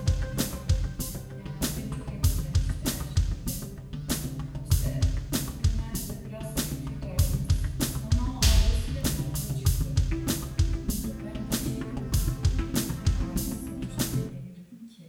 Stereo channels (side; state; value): both; identical; correlation 1.00